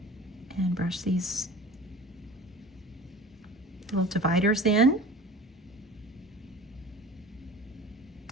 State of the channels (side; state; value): both; normal; correlation 0.40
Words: and brush these little dividers in,